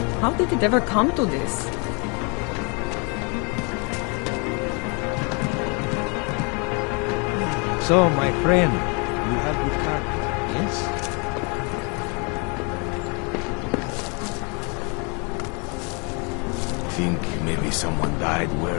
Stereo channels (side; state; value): right; quieter; 33.5 dB